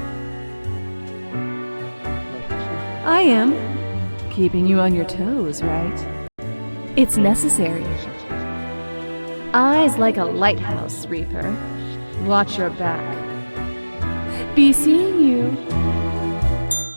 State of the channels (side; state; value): both; inverted; correlation -1.00